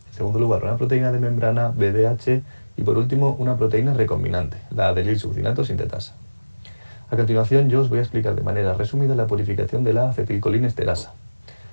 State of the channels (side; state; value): both; inverted; correlation -1.00